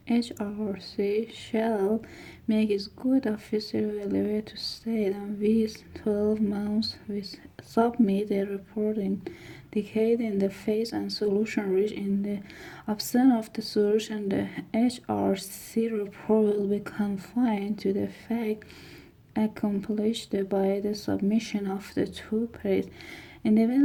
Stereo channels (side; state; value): both; identical; correlation 1.00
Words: HRC shall make its good official available to state and within 12 months we submit a report indicating the phase and solution reached. In the absence of the solution, the HRC report will be confined to the fact accomplished by the submission of the two parties. In the